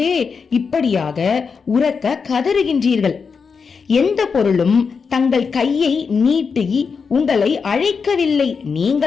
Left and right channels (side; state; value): right; quieter; 5.5 dB